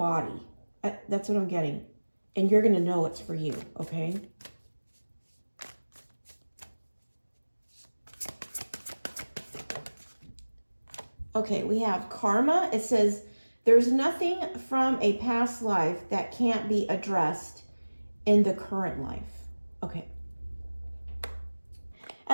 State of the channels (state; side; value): inverted; both; correlation -1.00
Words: That's what I'm getting. And you're going to know it's for you, okay? Okay, we have karma. It says, there's nothing from a past life that can't be addressed in the current life. Okay.